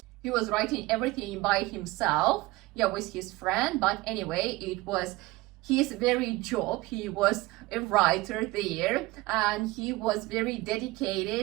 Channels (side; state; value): left; quieter; 20.5 dB